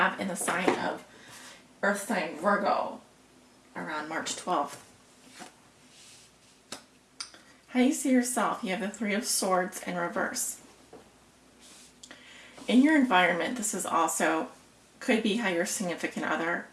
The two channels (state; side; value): identical; both; correlation 1.00